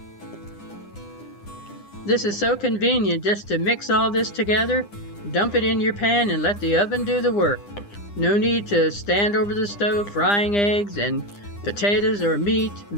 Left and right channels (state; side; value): late; right; 9.9 ms